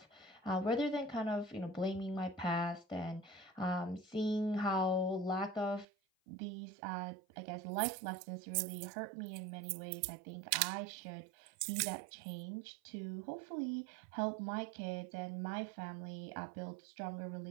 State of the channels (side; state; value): left; drops out; at 5.9 s